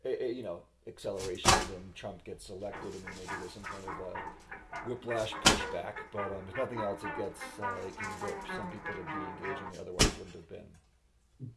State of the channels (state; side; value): identical; both; correlation 1.00